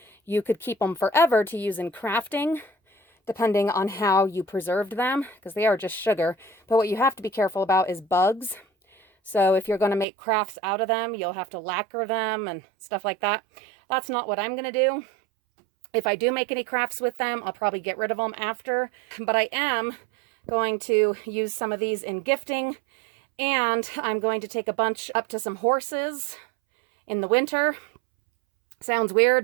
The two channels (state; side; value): drops out; left; at 10.1 s